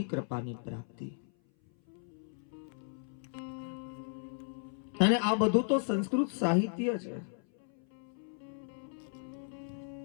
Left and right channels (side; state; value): right; silent; 54 dB below the other